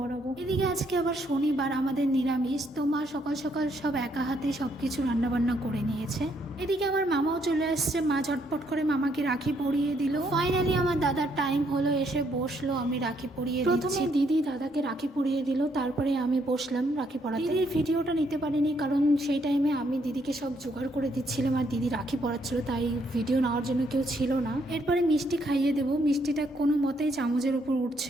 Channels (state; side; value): normal; both; correlation 0.72